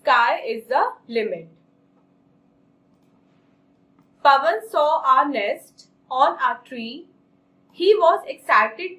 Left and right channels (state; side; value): identical; both; correlation 1.00